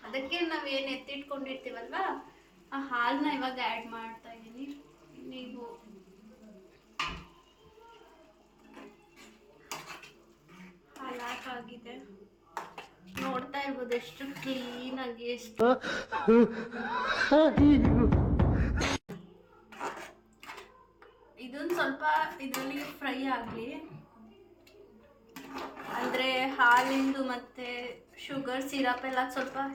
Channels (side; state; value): both; identical; correlation 1.00